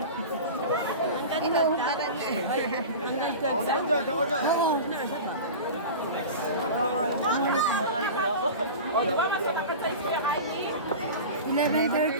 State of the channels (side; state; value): both; inverted; correlation -0.31